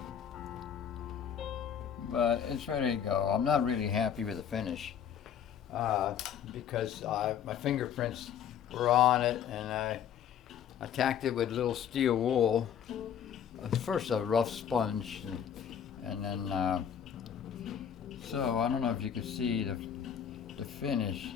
But it's ready to go. I'm not really happy with the finish because my fingerprints were on it, and I tacked it with little steel wool. First a rough sponge, and then so I don't know if you can see the finish,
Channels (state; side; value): quieter; right; 8.6 dB